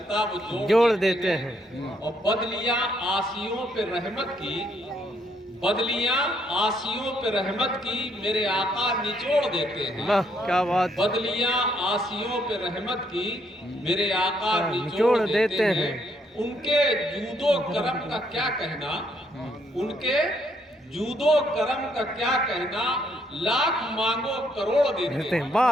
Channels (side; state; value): both; normal; correlation 0.71